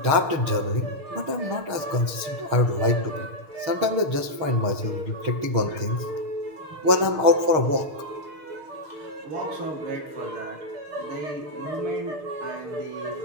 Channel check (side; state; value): left; late; 6.6 ms